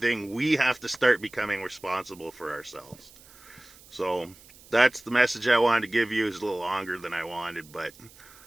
we have to start becoming responsible for ourselves. So that's the message I wanted to give you. It's a little longer than I wanted, but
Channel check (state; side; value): noise; right; hiss, 23 dB below the sound